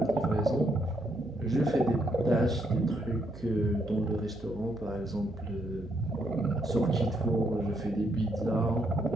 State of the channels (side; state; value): right; noise; hum, 16 dB below the sound